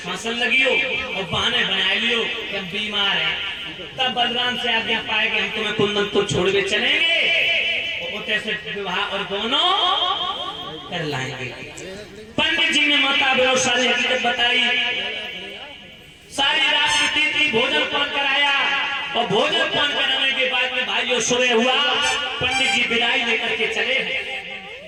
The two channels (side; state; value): both; identical; correlation 1.00